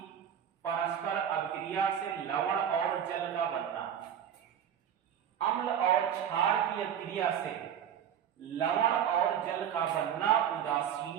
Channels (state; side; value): quieter; left; 9.2 dB